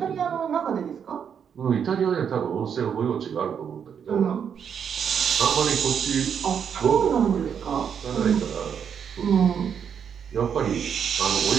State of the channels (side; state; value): left; quieter; 7.6 dB